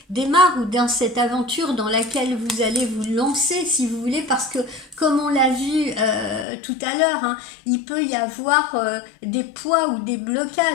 démarre, ou dans cette aventure dans laquelle vous allez vous lancer, si vous voulez, parce que comme on l'a vu tout à l'heure, hein, il peut y avoir des poids ou des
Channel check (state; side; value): drops out; right; at 6.5 s